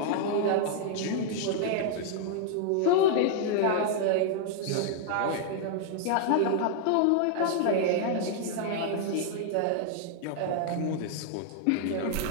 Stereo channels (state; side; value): different; both; correlation 0.00